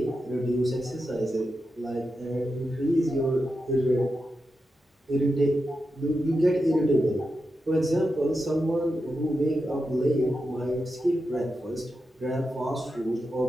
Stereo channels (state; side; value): normal; both; correlation 0.89